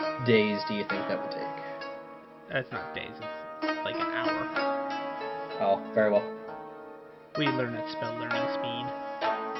days do you think that would take? It's not days, it's like an hour. Oh, very well. We learn at spell learning speed.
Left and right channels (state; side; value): identical; both; correlation 1.00